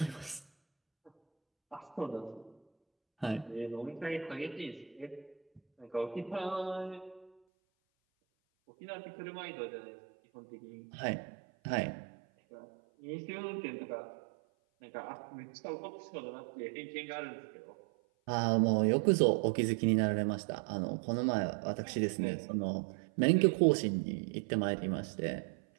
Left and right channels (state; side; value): drops out; left; at 7.3 s